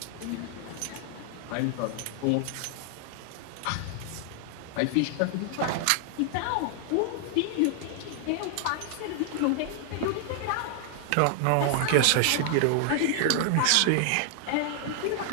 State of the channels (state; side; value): different; both; correlation 0.00